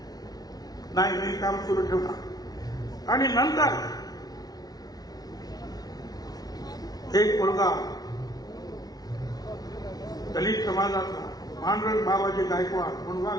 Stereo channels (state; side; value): late; right; 0.19 ms